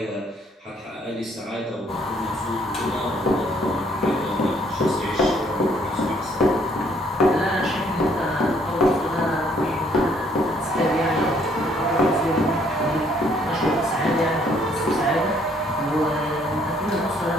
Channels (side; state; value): both; normal; correlation 0.65